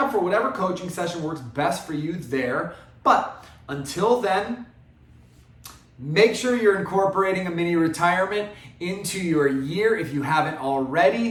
for whatever coaching session works best for you there. But until then, make sure you're incorporating a mini retirement into your year if you haven't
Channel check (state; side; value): identical; both; correlation 1.00